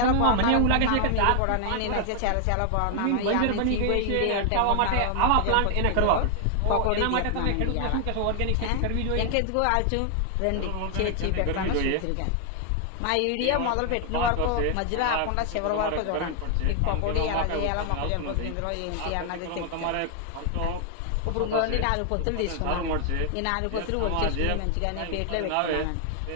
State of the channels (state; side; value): different; both; correlation 0.00